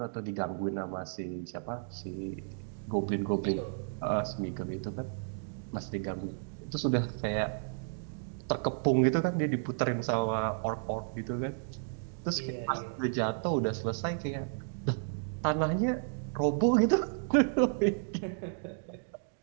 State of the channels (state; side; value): silent; left; digital silence